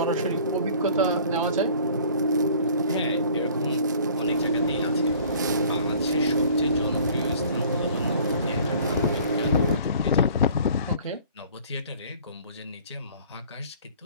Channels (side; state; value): both; inverted; correlation -0.50